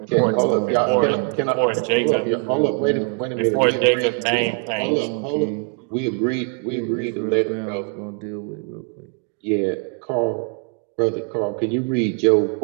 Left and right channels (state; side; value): quieter; left; 39.7 dB